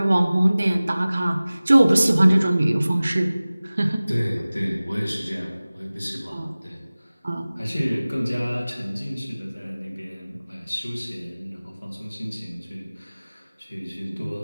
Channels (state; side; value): inverted; both; correlation -0.98